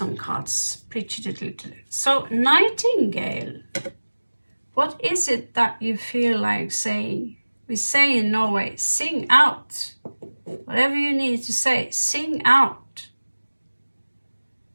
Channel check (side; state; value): both; inverted; correlation -1.00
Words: cards, pre-cheated. So, Nightingale, what is it that you feel like saying? We say in Norway, sing out. Whatever you need to say, sing out.